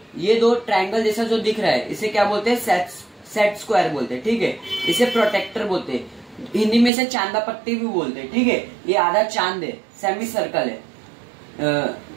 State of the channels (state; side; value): drops out; left; at 6.9 s